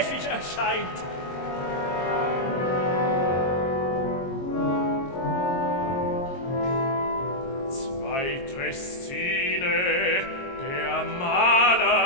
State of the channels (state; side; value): late; right; 22 ms